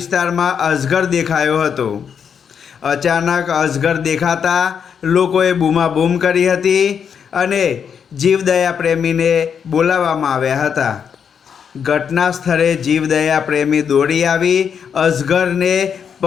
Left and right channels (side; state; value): right; quieter; 7.3 dB